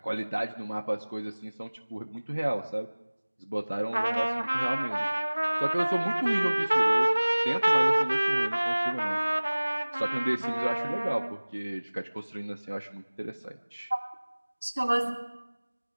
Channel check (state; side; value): inverted; both; correlation -1.00